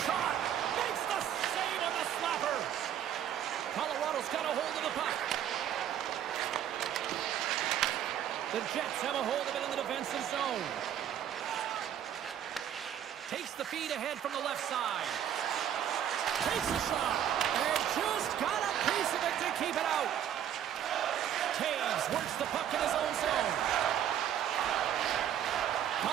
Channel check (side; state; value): left; quieter; 10.1 dB